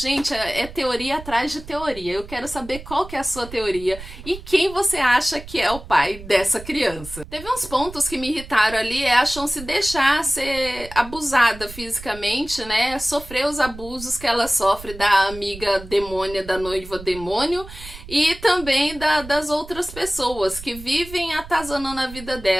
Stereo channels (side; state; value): right; noise; rumble, 14 dB below the sound